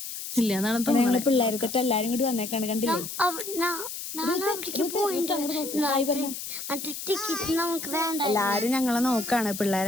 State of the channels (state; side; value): noise; left; hiss, 8 dB below the sound